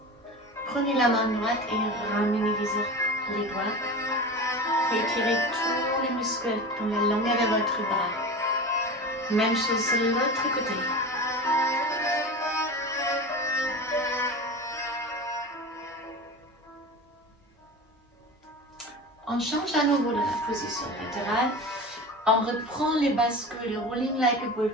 Prenez la main droite et ramenez les doigts. Étirez tous les muscles dans la longueur de votre bras. Même chose sur l'autre côté. On change à nouveau de la position latérale. On reprend les bascules, le rolling like a ball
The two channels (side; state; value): both; normal; correlation 0.30